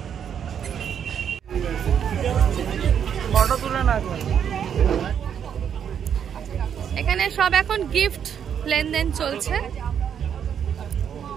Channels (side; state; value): left; quieter; 8.3 dB